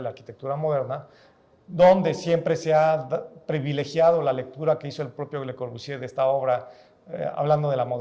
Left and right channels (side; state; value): both; identical; correlation 1.00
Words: la arquitectura moderna, donde siempre se ha privilegiado la lectura que hizo el propio Le Corbusier de esta obra, hablando de la